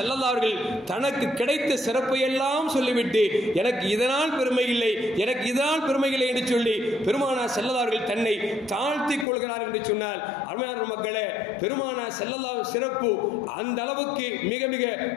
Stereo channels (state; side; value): drops out; right; at 9.2 s